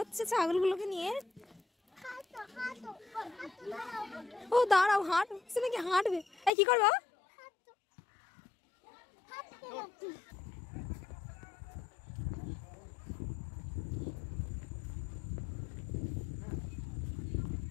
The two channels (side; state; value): right; drops out; at 6.5 s